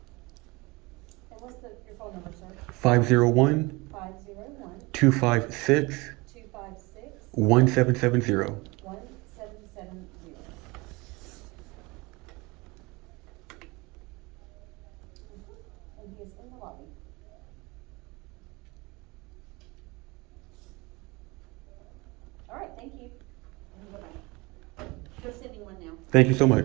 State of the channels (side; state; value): left; quieter; 24.6 dB